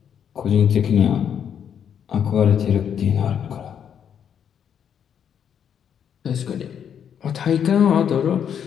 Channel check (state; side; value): quieter; right; 8.4 dB